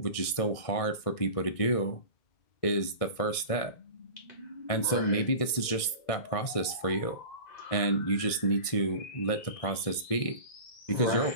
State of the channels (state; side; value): late; right; 1.6 ms